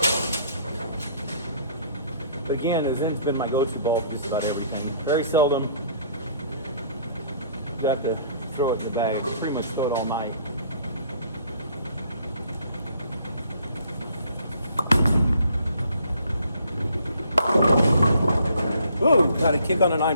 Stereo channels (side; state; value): both; inverted; correlation -0.60